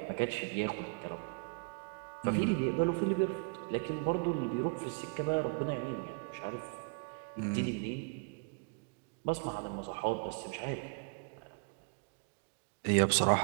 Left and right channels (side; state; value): left; quieter; 35.7 dB